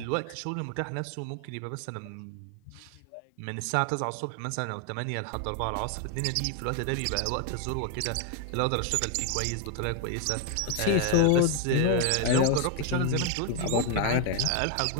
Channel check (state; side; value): different; both; correlation 0.01